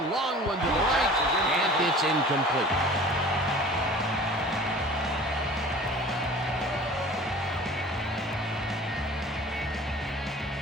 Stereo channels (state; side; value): normal; both; correlation 0.44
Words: long one to the right, and it's incomplete.